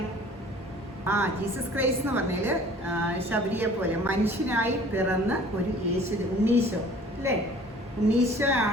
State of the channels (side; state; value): both; normal; correlation 0.50